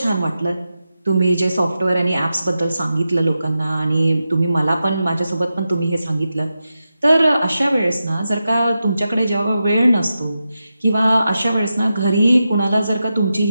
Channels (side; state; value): both; inverted; correlation -0.90